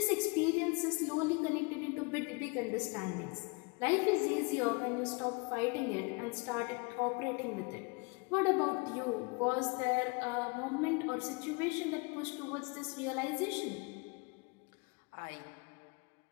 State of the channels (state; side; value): quieter; right; 30.1 dB